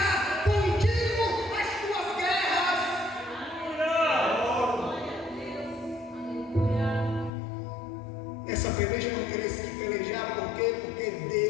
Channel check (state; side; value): drops out; right; at 7.3 s